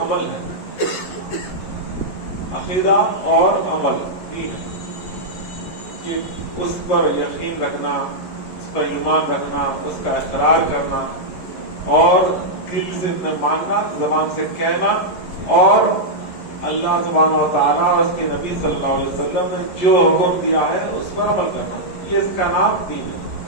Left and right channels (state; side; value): late; right; 11 ms